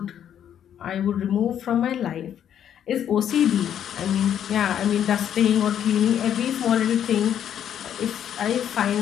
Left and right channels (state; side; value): quieter; right; 9.7 dB